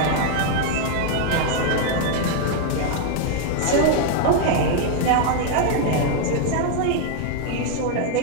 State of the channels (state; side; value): different; both; correlation 0.00